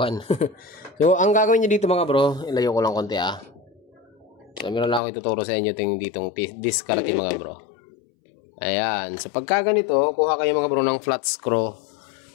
So ang gagawin niyo dito mga bro, ilayo ko lang konti So meron lang ako ituturo sa inyo ditong diskarte mga bro. Ayan. So pagka ganito, kuha kayo mga bro ng flat screw.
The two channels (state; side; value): drops out; right; at 5.0 s